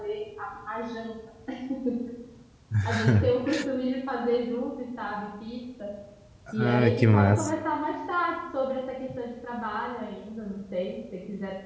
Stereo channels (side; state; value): both; identical; correlation 1.00